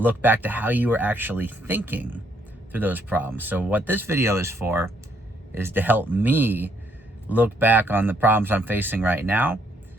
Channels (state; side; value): normal; both; correlation 0.70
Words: back to how you were actually thinking through those problems. So what this video is for is to help me look back on the problems I'm facing right now.